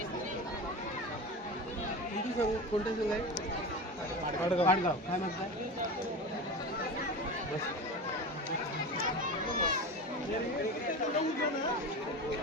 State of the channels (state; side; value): normal; both; correlation 0.27